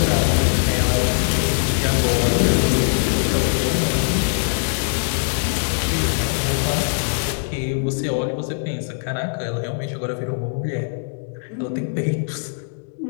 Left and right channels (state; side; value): silent; right; digital silence